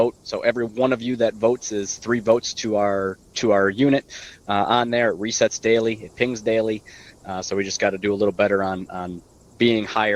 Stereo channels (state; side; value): identical; both; correlation 1.00